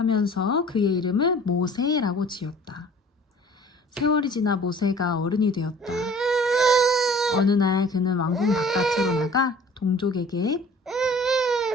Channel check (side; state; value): both; normal; correlation 0.49